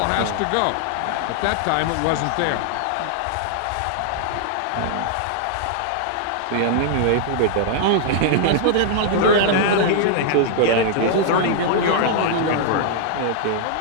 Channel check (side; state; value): both; different; correlation -0.01